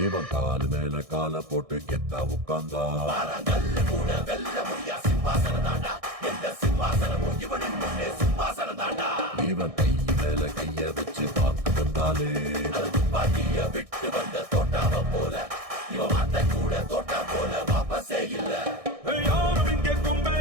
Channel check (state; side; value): late; left; 1.6 ms